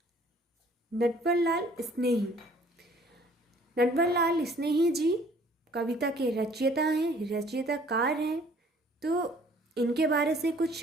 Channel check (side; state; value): both; normal; correlation 0.56